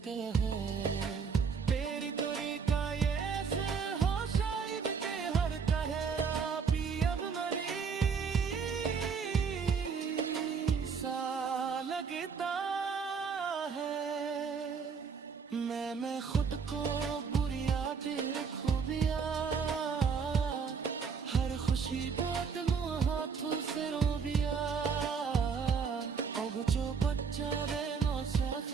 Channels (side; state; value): left; quieter; 5.9 dB